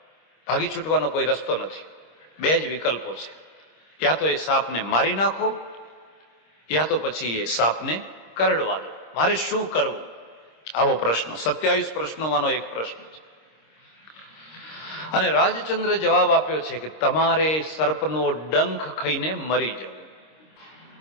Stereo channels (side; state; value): right; late; 26 ms